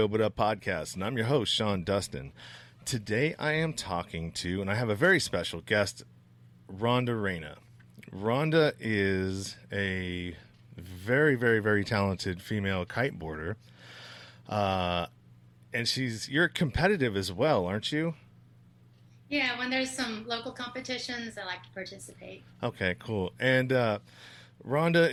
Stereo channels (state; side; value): identical; both; correlation 1.00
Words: But Up podcast, and I'm your host, Sean Dustin. Today I am talking to, and I have a very special guest, Rhonda Reyna. Rhonda is a very, very, very talented female kiteboarder, and you're competitive as well, aren't you? Yeah, when there's some local competitions, I like to participate. Okay, cool. And Rhonda